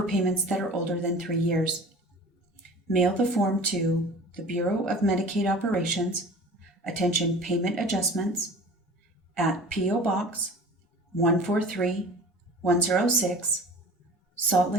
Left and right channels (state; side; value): normal; both; correlation 0.41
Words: that are older than 3 years. Mail the form to the Bureau of Medicaid Operations, Attention Payment Adjustments, at P.O. Box 143106, Salt